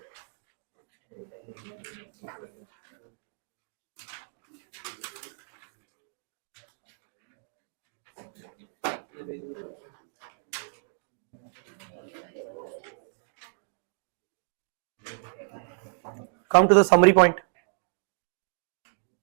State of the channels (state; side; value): silent; left; digital silence